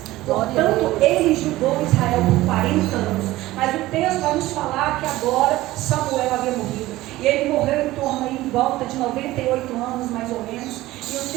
Portanto, ele julgou Israel por 40 anos. Mas o texto vai nos falar que agora Samuel havia morrido. E ele morreu em volta de 98 anos, mais ou menos. E o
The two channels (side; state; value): left; quieter; 17.2 dB